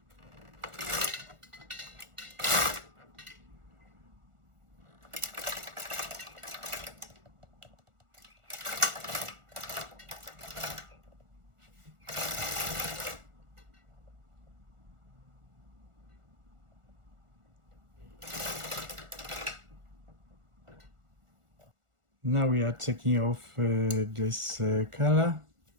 Now we are taking off this color.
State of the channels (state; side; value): late; left; 1.4 ms